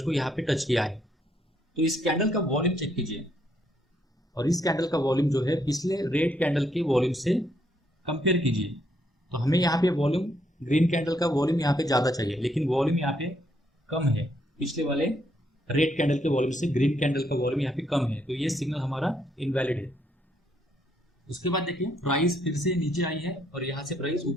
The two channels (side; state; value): both; normal; correlation 0.73